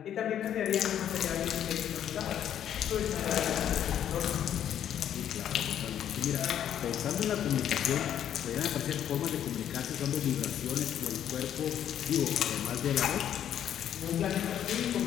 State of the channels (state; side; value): quieter; right; 10.1 dB